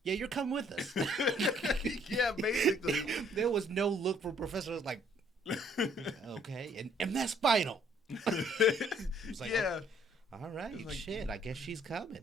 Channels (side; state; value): both; normal; correlation 0.64